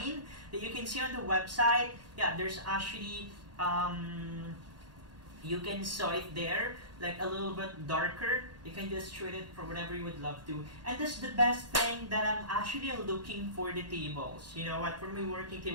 that you can see on the website. Yeah, there's actually you can saw it there, like a little bit darker. You can just treat it for whatever you would love to. And that's the best thing that I'm actually looking for the tables. You know what, for my working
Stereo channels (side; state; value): left; late; 1.8 ms